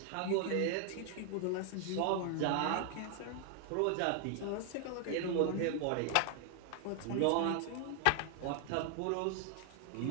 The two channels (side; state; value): both; different; correlation 0.00